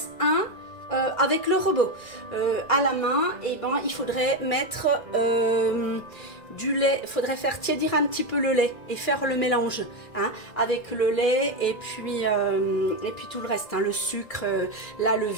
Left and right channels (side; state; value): right; late; 2.0 ms